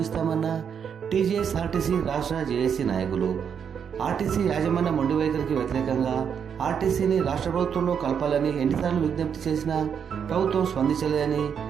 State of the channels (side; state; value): left; quieter; 7.5 dB